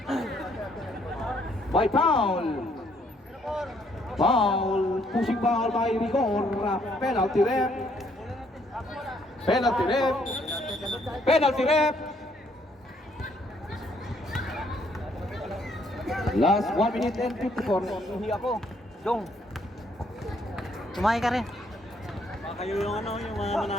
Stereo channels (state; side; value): normal; both; correlation 0.68